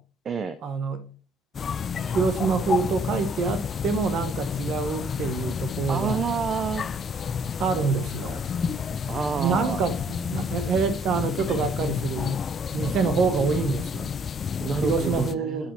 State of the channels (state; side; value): normal; both; correlation 0.63